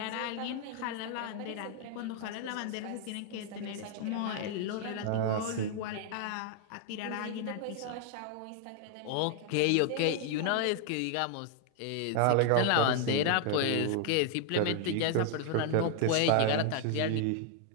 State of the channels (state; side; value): different; both; correlation 0.00